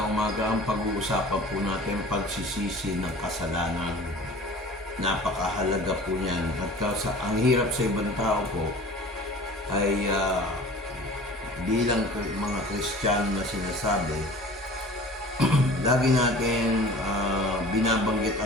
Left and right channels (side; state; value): both; normal; correlation 0.43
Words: umaga. Ang pag-uusapan po natin pagsisisi ng kasalanan. Napakahalaga po niyan. At ang hirap sa ibang tao po ay bilang mga Kristiyano na sinasabi, lagi natin binabanggit